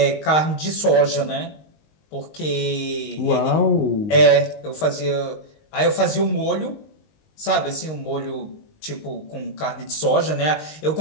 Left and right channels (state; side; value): late; right; 19 ms